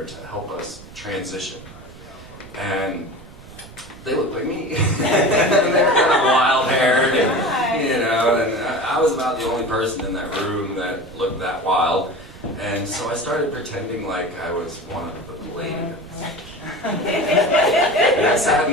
to help us transition. And they look like me. And they're kind of wild-haired, and, you know, and I was about the only person in that room that looked that wild. And so I started pretending like I was one of the Palladians. And I sat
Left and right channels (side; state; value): right; noise; rumble, 19 dB below the sound